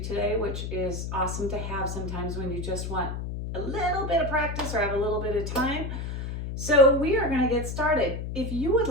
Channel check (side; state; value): left; noise; hum, 5 dB below the sound